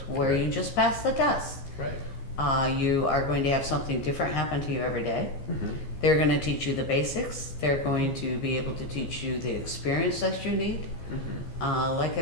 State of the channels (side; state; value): right; late; 15 ms